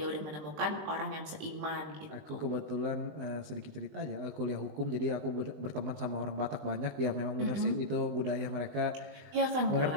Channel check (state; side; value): late; left; 20 ms